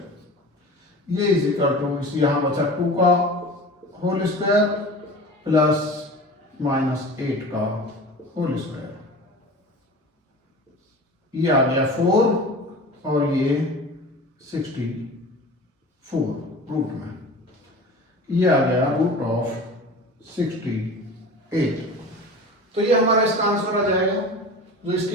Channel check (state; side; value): normal; both; correlation 0.36